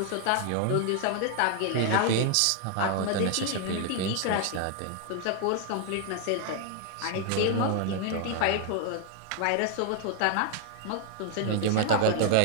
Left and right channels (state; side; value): different; both; correlation 0.00